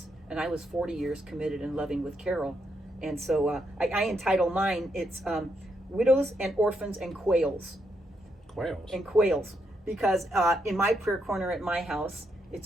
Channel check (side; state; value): both; normal; correlation 0.79